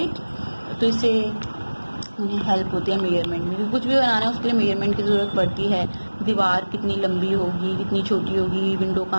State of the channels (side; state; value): both; inverted; correlation -1.00